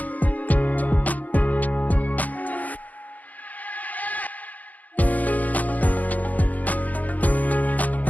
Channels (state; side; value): late; right; 0.080 ms